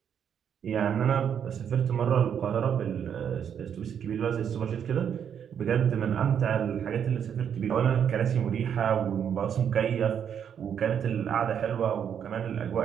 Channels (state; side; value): quieter; left; 8.3 dB